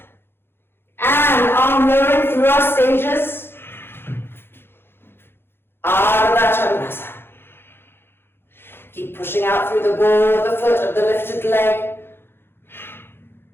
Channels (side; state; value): right; late; 0.11 ms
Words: And arm lowering through our stages, Ardha Chandrasana. Keep pushing out through the ball of the foot of the lifted leg.